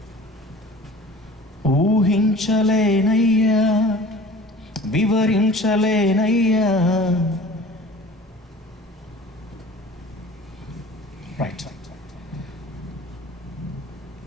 ఊహించలేనయ్యా, వివరించలేనయ్యా. రైట్.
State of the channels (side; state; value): both; normal; correlation 0.44